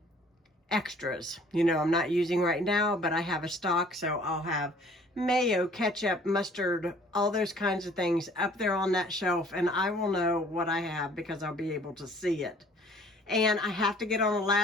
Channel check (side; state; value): both; normal; correlation 0.55